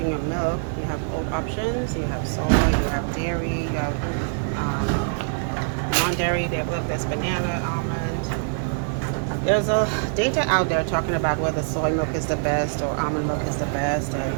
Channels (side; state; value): left; silent; digital silence